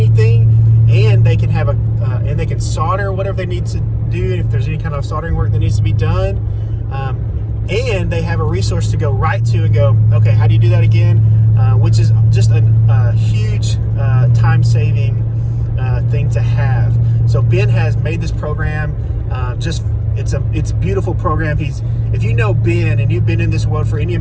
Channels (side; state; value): both; identical; correlation 1.00